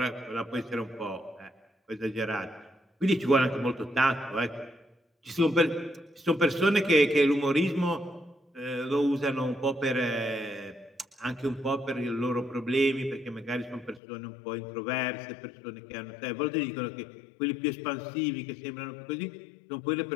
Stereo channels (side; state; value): right; drops out; at 14.0 s